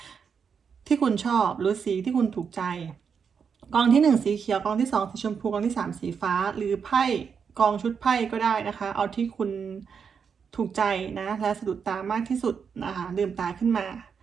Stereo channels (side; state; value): left; quieter; 6.5 dB